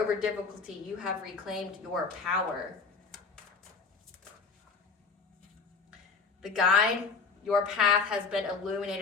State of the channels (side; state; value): right; quieter; 4.8 dB